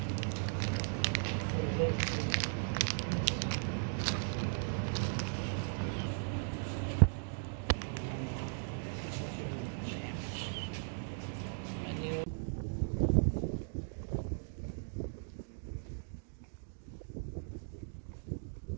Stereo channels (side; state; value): left; silent; digital silence